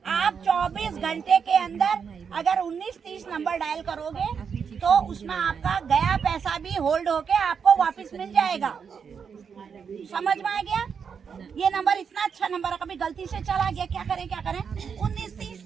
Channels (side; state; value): left; quieter; 6.6 dB